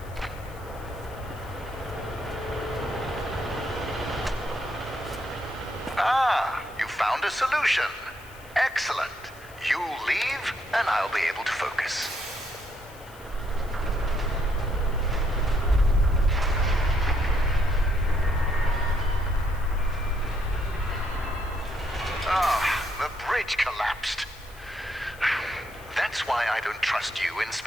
Ah, you found a solution. Excellent. You leave, and I'll be able to focus. The bridge collapsed. That's why I don't trust you,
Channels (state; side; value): noise; left; hiss, 23 dB below the sound